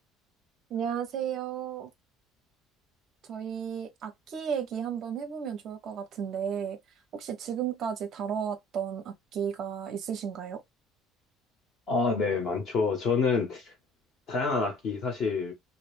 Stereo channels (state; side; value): normal; both; correlation 0.49